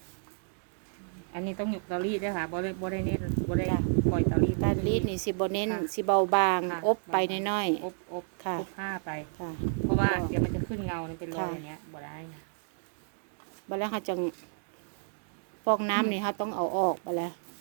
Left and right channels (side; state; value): left; silent; digital silence